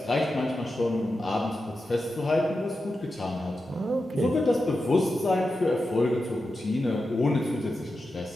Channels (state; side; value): normal; both; correlation 0.90